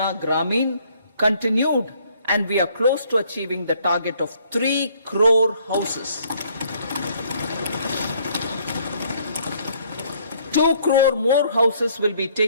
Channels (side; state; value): both; inverted; correlation -0.64